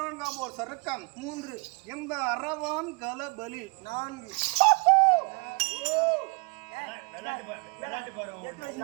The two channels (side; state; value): left; quieter; 31.8 dB